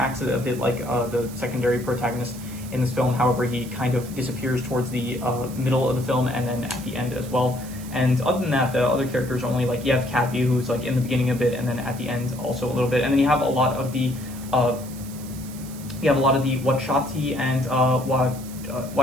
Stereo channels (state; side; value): noise; right; hiss, 17 dB below the sound